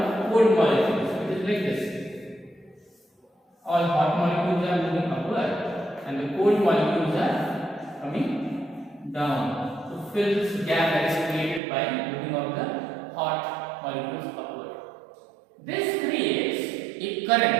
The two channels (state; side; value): drops out; left; at 11.6 s